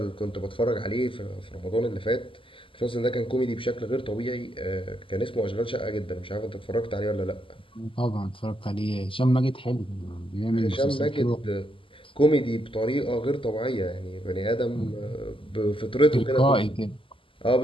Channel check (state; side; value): late; right; 0.25 ms